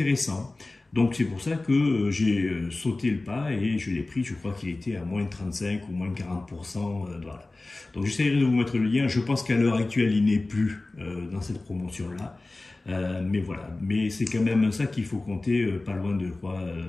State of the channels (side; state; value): right; quieter; 3.1 dB